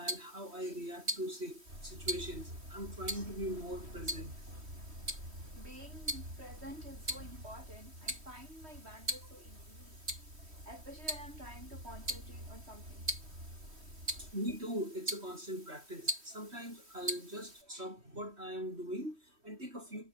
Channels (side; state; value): left; late; 3.1 ms